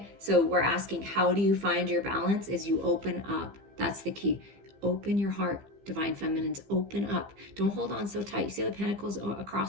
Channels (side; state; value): left; late; 15 ms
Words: so we're asking, how do you find your balance? Is you open up. That's the key. Open your heart, divine feminines. Open up. Don't hold on so tight. You see the pentacles